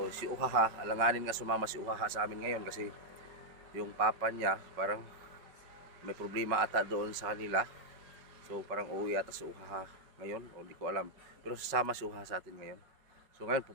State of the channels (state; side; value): late; left; 5.3 ms